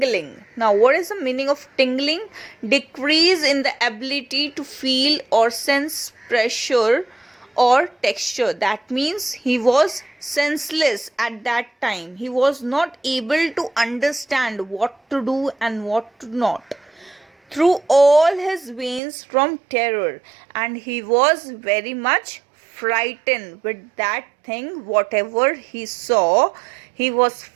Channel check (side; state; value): left; drops out; at 19.0 s